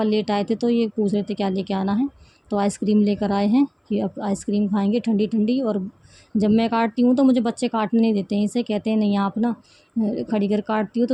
लेट आए थे तो ये पूछ रहे थे क्या लेके आना है। तो आइसक्रीम लेकर आए हैं कि अब आइसक्रीम खाएंगे ठंडी ठंडी। और जब मैं काटती हूँ तो मुझे बच्चे काटने नहीं देते हैं, इसे कहते हैं नहीं आप ना खड़ी कर काटती हो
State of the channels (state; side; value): identical; both; correlation 1.00